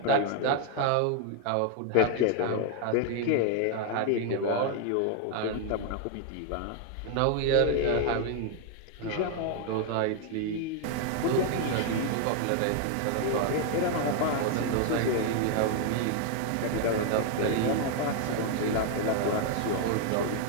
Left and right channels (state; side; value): different; both; correlation 0.00